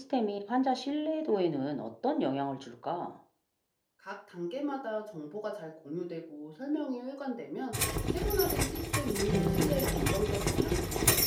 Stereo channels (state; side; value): identical; both; correlation 1.00